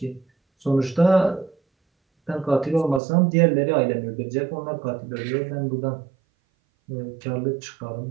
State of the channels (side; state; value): left; drops out; at 3.0 s